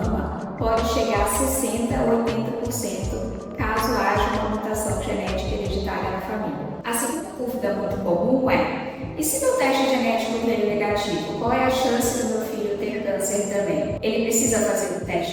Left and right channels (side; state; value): both; identical; correlation 1.00